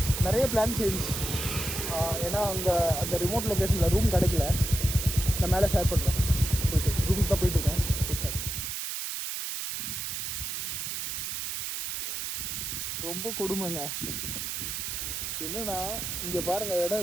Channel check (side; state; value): right; noise; hiss, 3 dB below the sound